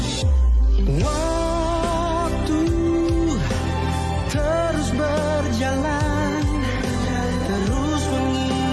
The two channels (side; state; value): both; identical; correlation 1.00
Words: Waktu terus berjalan, terus